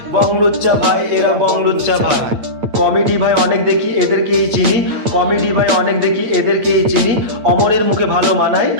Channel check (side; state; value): left; late; 8.8 ms